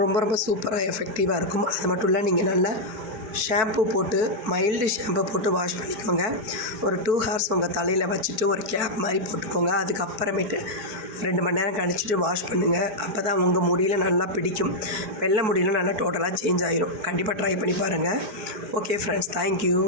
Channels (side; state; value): left; late; 4.6 ms